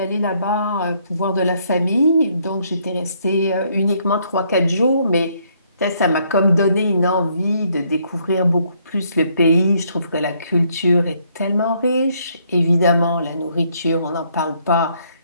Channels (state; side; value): inverted; both; correlation -0.69